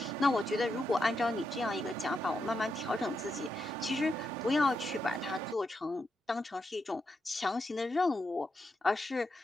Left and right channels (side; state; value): both; normal; correlation 0.84